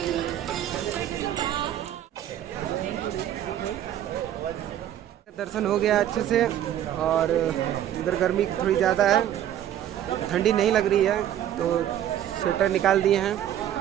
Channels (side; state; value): left; quieter; 11.2 dB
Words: दर्शन हो गया अच्छे से और इधर गर्मी थोड़ी ज़्यादा है, ठंडी नहीं लग रही है तो स्वेटर निकाल दिए हैं।